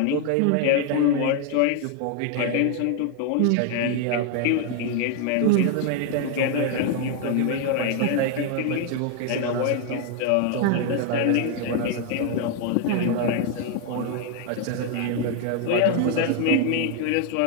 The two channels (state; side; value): different; both; correlation 0.00